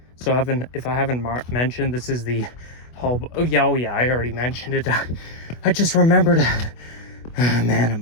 So if I haven't mentioned, this is the whole. Oh yeah, I already mentioned it. I just remembered.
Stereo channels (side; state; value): right; late; 24 ms